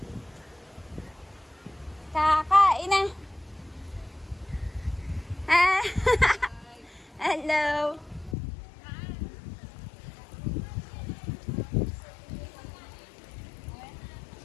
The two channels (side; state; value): right; drops out; at 8.3 s